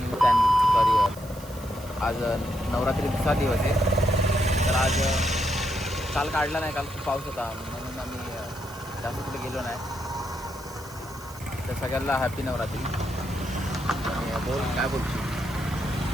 channel. Sorry, आज नवरात्री दुसरा दिवस आहे. तर आज काल काढला नाही, काल खूप पाऊस होता म्हणून आम्ही जास्त कुठे गेलो नाही. तर सगळ्यांना हॅपी नवरात्री. आणि बोल काय बोलतो,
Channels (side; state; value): right; noise; hiss, 19 dB below the sound